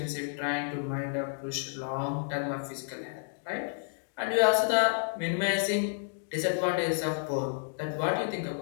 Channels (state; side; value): silent; right; digital silence